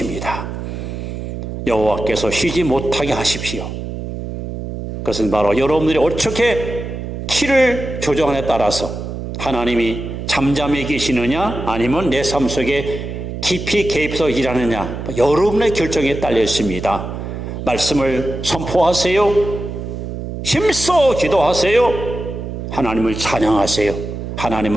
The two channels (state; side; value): noise; right; hum, 7 dB below the sound